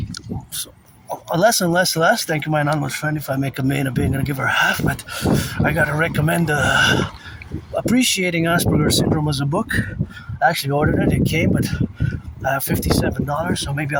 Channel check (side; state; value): both; identical; correlation 1.00